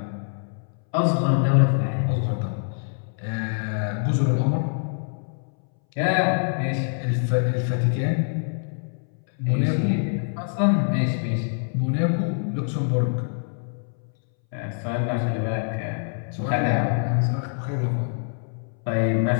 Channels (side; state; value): right; silent; 62 dB below the other